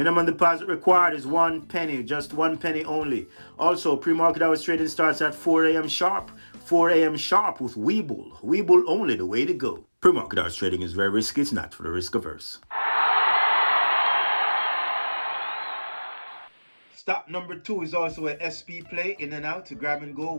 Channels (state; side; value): inverted; both; correlation -1.00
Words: deposit required is 1 penny, just 1 penny only. Also, pre-market hours trading starts at 4 a.m. sharp. 4 a.m. sharp with Webull. Webull only, the way to go. Pre-market hours trading is very risky. It's not for the risk averse. Stock number 2 is also a SP play, in and out, grab and go,